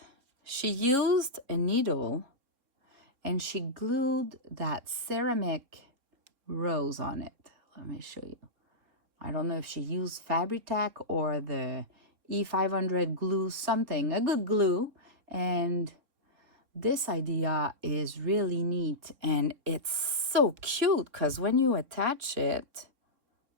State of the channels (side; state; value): left; late; 3.7 ms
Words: She used a needle and she glued that ceramic rose on it. Let me show you. I don't know if she used Fabri-Tac or the E500 glue, something, a good glue. And this idea is really neat and it's so cute because when you attach it,